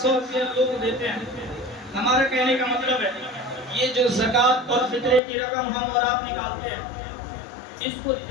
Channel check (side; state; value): right; drops out; at 5.2 s